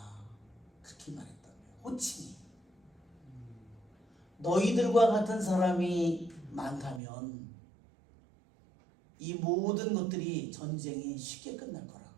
그렇게 말했다고요. 호칭이 너희들과 같은 사람이 많다면 이 모든 것들이 전쟁이 쉽게 끝날 거라고.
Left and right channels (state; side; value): drops out; left; at 7.0 s